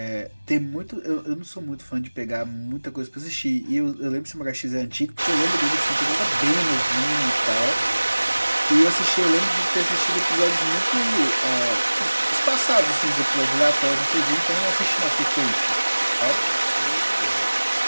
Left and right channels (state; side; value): inverted; both; correlation -1.00